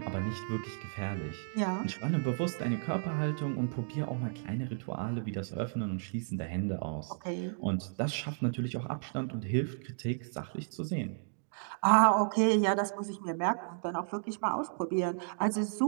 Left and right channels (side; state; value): left; silent; digital silence